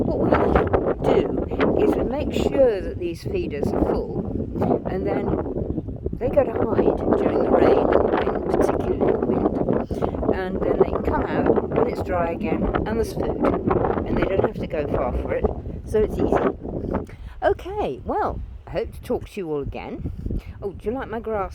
we do is we make sure that these feeders are full, and then they go to hide during the rain, and particularly the wind. and then they can come out when it's dry again and there's food, and they don't have to go far for it, so it's easy. Okay, well, I hope to talk to you all again. Oh, do you like my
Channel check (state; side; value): identical; both; correlation 1.00